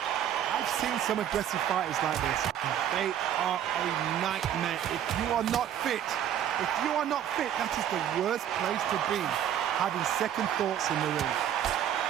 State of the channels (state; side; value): quieter; left; 10.2 dB